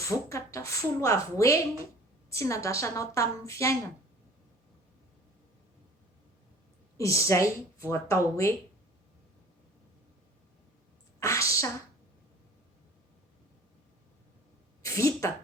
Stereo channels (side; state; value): both; normal; correlation 0.47